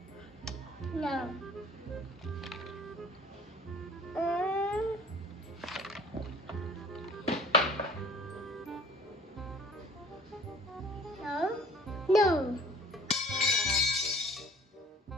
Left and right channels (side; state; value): both; normal; correlation 0.49